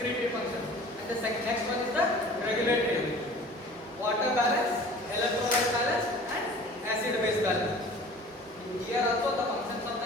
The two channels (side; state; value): both; normal; correlation 0.45